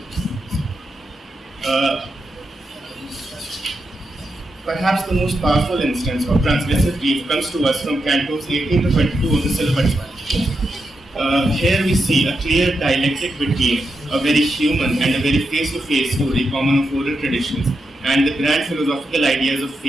Perhaps the most powerful instance of transgressive grief comes to us from cantos 18 to 22 of the Cilappatikāram. Here we see a clear dialectic between a very human and a very face-to-face story common of oral traditions and the grand philosophical ideas of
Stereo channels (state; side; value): normal; both; correlation 0.86